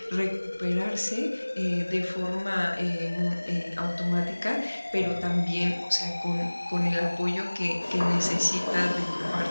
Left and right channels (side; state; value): both; inverted; correlation -1.00